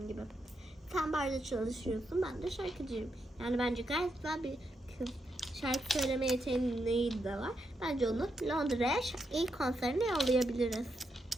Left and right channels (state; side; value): normal; both; correlation 0.82